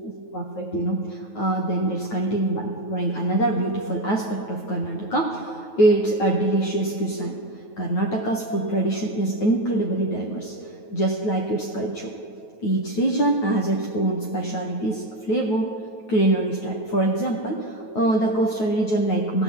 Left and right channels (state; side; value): late; right; 9.3 ms